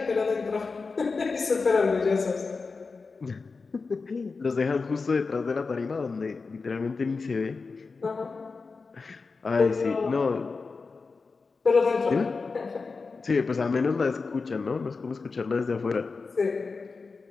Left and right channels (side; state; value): right; quieter; 4.4 dB